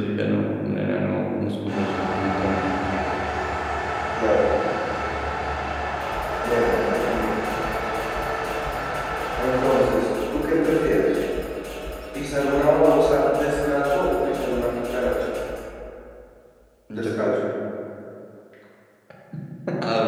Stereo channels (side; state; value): both; identical; correlation 1.00